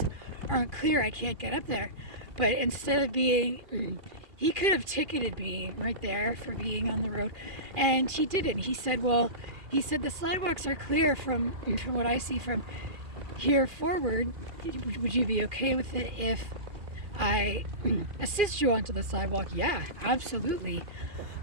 aren't clear, I can't get up there. But instead of being, he could have ticketed me right there for being on the road, and he didn't. He said, well, the sidewalks are clear from what I see from here forward. Would you be okay with it if I assist you onto the sidewalk? Yeah, absolutely.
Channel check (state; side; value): late; left; 2.4 ms